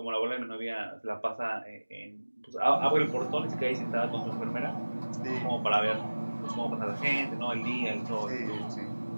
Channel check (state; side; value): inverted; both; correlation -1.00